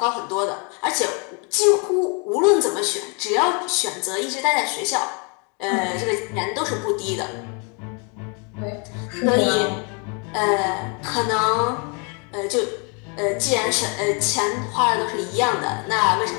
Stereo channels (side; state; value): right; quieter; 34.9 dB